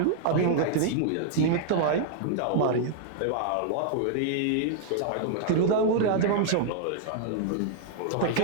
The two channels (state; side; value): different; both; correlation -0.01